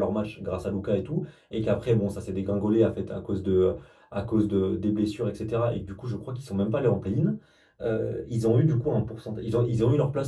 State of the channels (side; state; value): both; identical; correlation 1.00